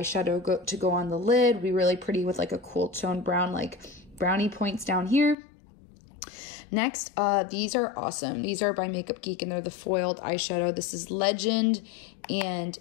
to go on the lid. Be really pretty with a cool tone brown, Brownie Points down here. Next, these are awesome. These are by Makeup Geek, and they're the foiled eyeshadow. This is Legend, and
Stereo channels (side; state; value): right; drops out; at 5.4 s